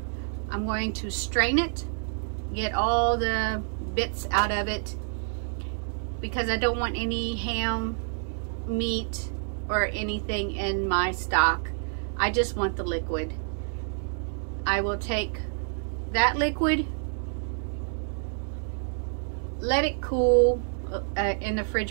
I'm going to strain it, get all the bits out of it, because I don't want any ham, meat, or anything in my stock. I just want the liquid. I will take that liquid, let it cool in the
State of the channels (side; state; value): left; silent; 59 dB below the other